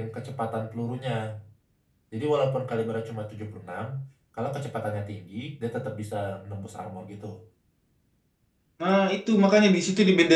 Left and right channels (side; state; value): both; identical; correlation 1.00